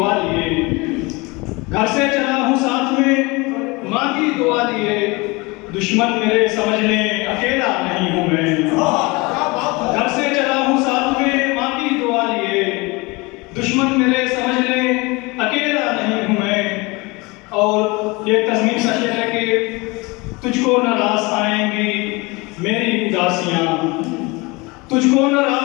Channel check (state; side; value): quieter; right; 25.3 dB